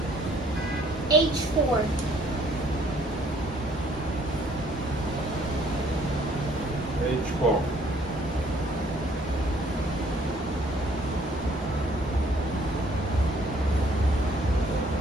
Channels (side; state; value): both; normal; correlation 0.61